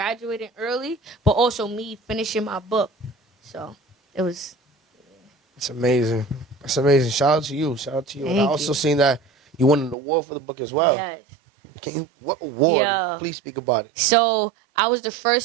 early, but also me finishing my book. So it was. It's amazing. It's amazing. Shout out to you. And I also seen that you won an award for the book as well. Yes. What award? Yeah. Please speak about it. So I was the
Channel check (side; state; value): left; drops out; at 10.0 s